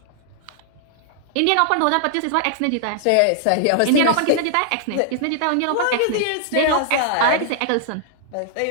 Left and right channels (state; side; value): different; both; correlation -0.01